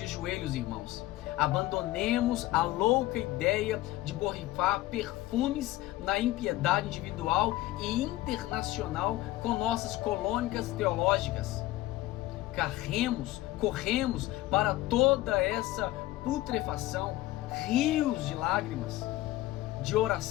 joelhos, irmãos. Abandonemos a louca ideia de borrifar perfumes na impiedade individual e internacional com nossas colônicas teológicas. Corremos para toda essa putrefação, rios de lágrimas, de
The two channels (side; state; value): right; quieter; 16.6 dB